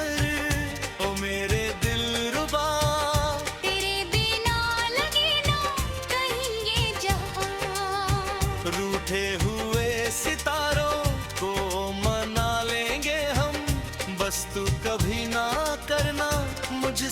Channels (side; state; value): both; identical; correlation 1.00